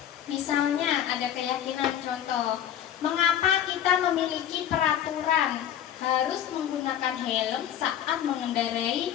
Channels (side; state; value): right; quieter; 10.5 dB